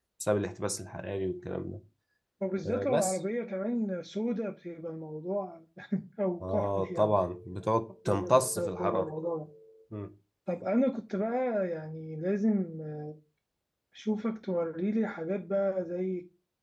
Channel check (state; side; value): identical; both; correlation 1.00